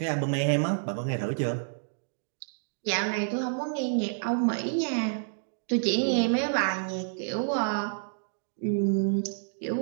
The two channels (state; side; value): silent; left; digital silence